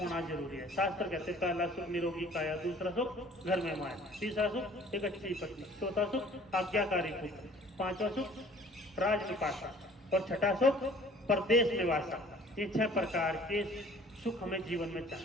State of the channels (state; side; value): normal; both; correlation 0.51